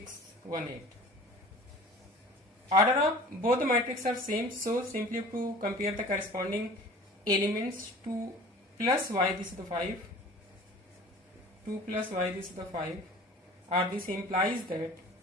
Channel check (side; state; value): both; normal; correlation 0.44